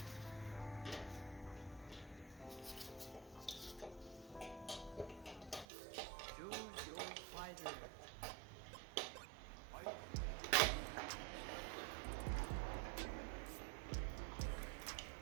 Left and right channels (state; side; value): drops out; left; at 5.7 s